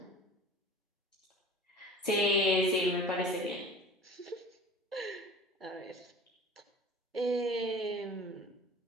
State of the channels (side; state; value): both; normal; correlation 0.41